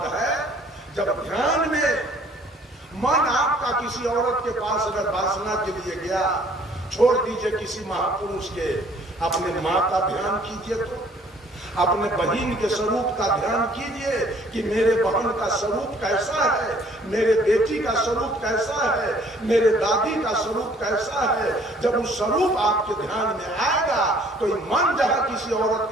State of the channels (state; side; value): normal; both; correlation 0.58